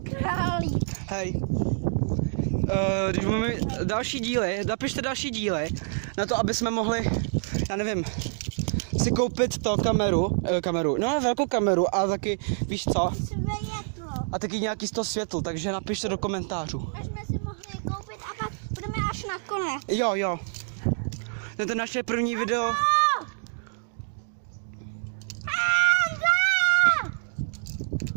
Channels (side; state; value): left; silent; digital silence